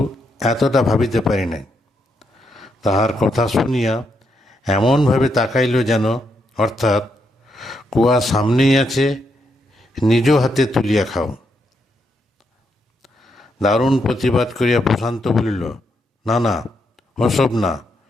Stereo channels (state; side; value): normal; both; correlation 0.79